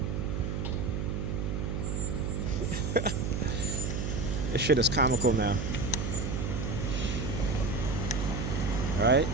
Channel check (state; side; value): noise; right; hum, 1 dB below the sound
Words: This shit is comical now. Right?